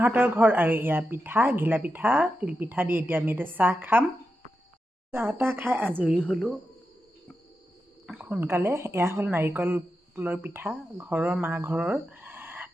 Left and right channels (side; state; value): both; normal; correlation 0.89